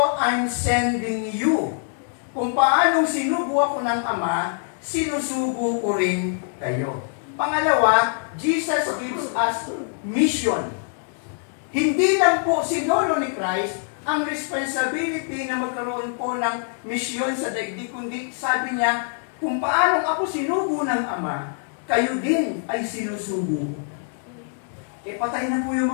I'm sending you. Kung paanong sinugo ako ng Ama, sinusugo ko rin kayo. Pangalawa, Jesus gives us mission. Hindi lang po sinolo ni Christ ang responsibility na magkaroon po ng misyon sa daigdig, kundi sabi niya, kung paanong ako sinugo ng Ama, kayo din ay sinusugo. Patay na po yung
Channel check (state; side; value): silent; right; digital silence